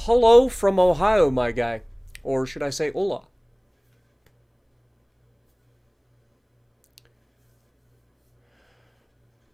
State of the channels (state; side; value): identical; both; correlation 1.00